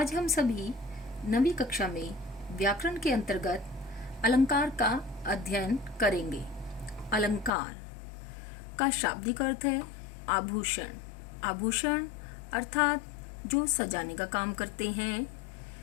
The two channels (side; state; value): right; drops out; at 7.5 s